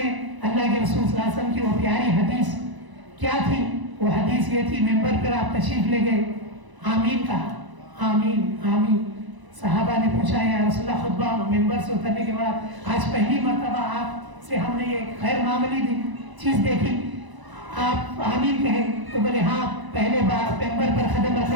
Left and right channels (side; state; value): left; late; 1.0 ms